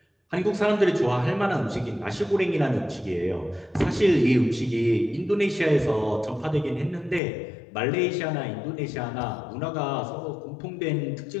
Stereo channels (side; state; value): right; drops out; at 7.2 s